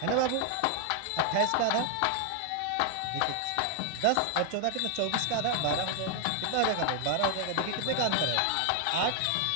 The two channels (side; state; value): both; different; correlation 0.00